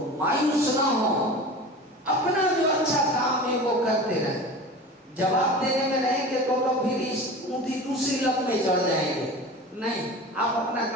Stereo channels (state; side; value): normal; both; correlation 0.34